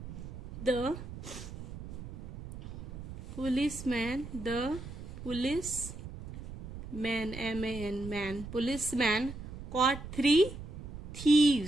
the policeman caught 3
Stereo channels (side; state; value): right; noise; rumble, 12 dB below the sound